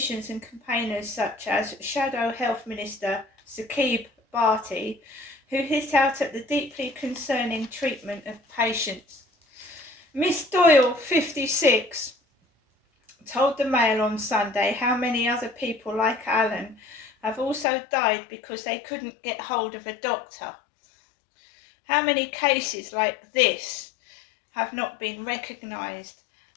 and campaigners such as Shadow Health Minister Saqib Bharti, who hit out at the deeply concerning treatment of patients. Miss Doyle, 56, told the Mail on Sunday how many other people like Alan have also died because they couldn't get hold of a doctor. How many cases like this have not been recognised?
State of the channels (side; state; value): right; drops out; at 17.7 s